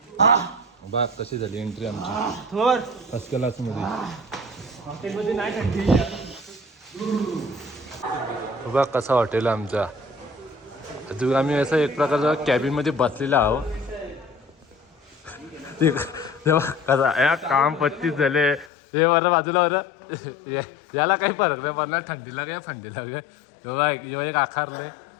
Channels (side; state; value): right; drops out; at 18.7 s